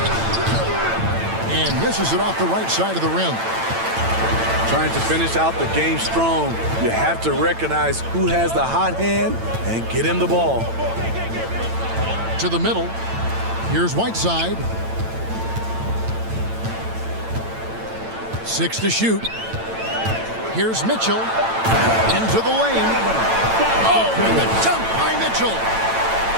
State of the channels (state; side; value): late; left; 8.9 ms